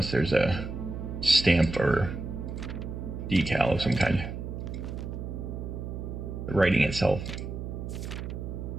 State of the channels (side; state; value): right; noise; hum, 6 dB below the sound